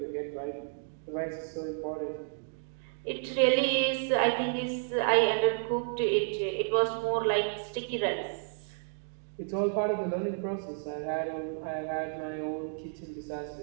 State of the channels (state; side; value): silent; left; digital silence